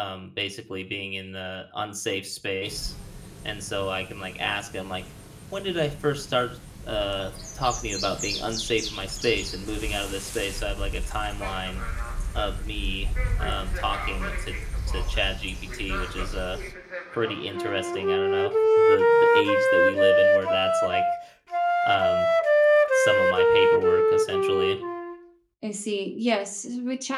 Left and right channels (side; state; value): both; identical; correlation 1.00